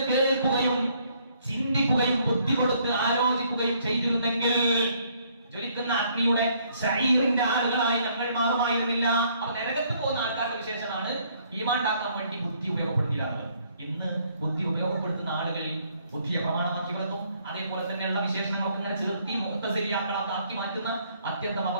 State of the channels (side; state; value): both; inverted; correlation -0.66